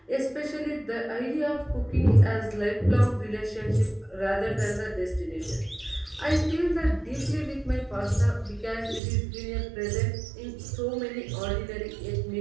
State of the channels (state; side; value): drops out; left; at 9.0 s